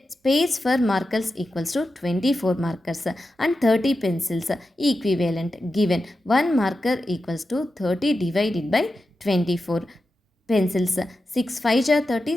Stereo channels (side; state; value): both; normal; correlation 0.91